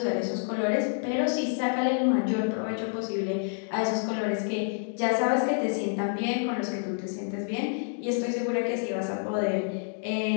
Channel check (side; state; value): right; silent; digital silence